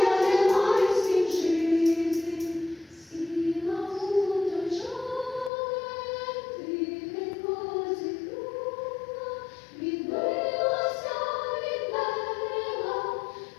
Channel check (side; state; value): right; drops out; at 5.5 s